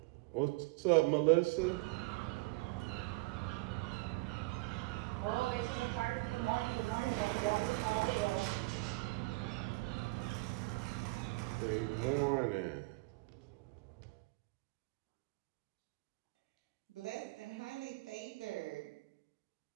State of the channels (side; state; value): left; quieter; 23.4 dB